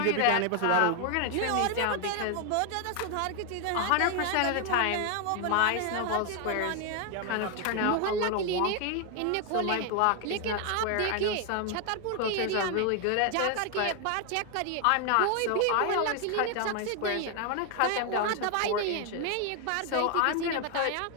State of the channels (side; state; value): both; different; correlation 0.01